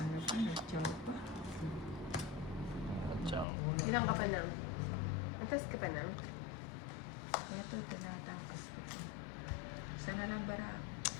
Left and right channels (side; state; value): right; drops out; at 3.5 s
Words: pa, nag-chow pa. Ciao. Ilang ka pa lang? Nagtas ka pa lang? Ito, tinatangkas ko. Sana lang bara.